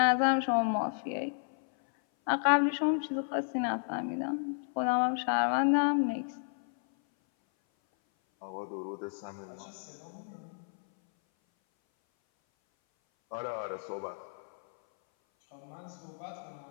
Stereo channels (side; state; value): right; silent; 56 dB below the other